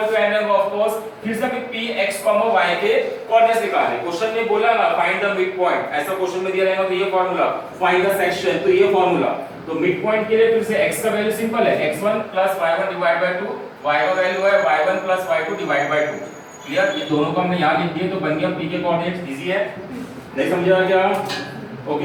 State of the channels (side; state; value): both; identical; correlation 1.00